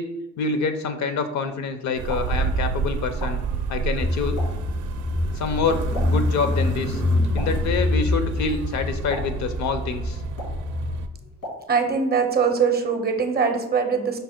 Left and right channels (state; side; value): normal; both; correlation 0.39